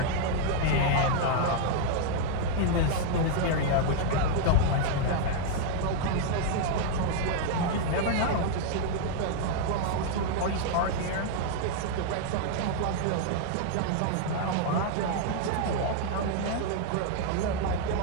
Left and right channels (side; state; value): both; different; correlation -0.01